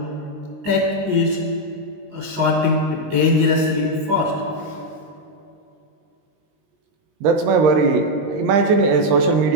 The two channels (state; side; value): late; left; 19 ms